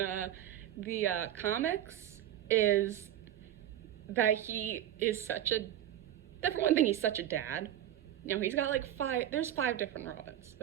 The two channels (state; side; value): quieter; left; 11.8 dB